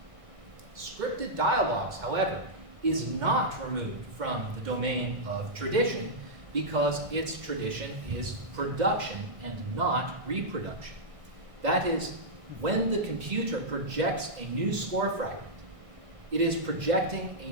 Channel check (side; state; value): left; late; 2.0 ms